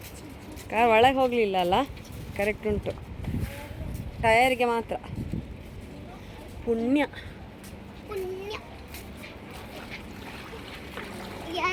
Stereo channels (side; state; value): both; identical; correlation 1.00